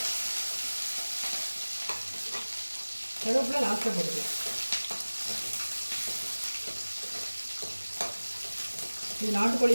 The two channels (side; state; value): both; inverted; correlation -1.00